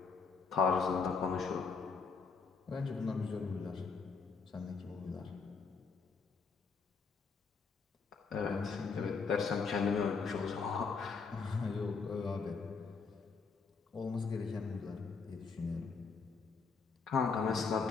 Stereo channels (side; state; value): right; quieter; 5.1 dB